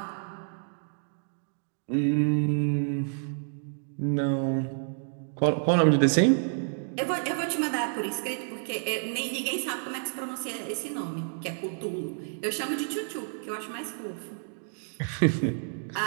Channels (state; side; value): silent; left; digital silence